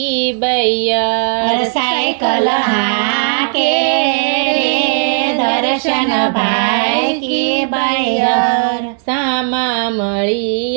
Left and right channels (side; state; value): left; silent; digital silence